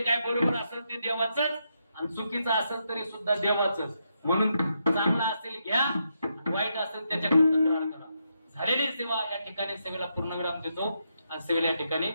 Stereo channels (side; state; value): both; inverted; correlation -0.81